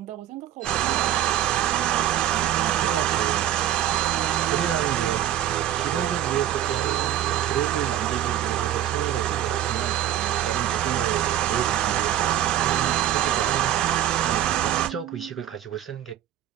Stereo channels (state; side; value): quieter; left; 11.8 dB